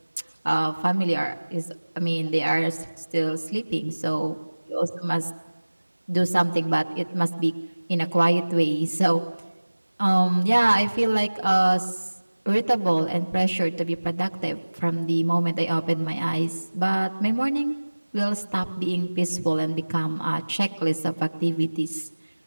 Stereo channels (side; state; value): both; inverted; correlation -1.00